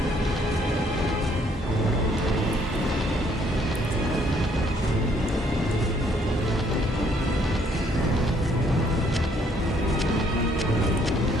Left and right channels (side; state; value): both; normal; correlation 0.66